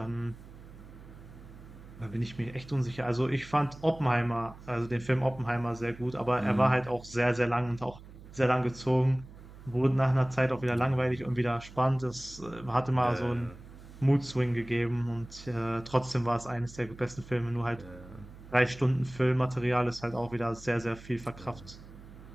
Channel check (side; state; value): right; noise; hum, 18 dB below the sound